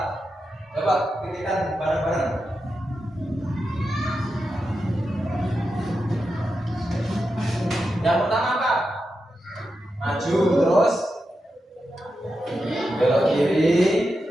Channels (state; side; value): normal; both; correlation 0.88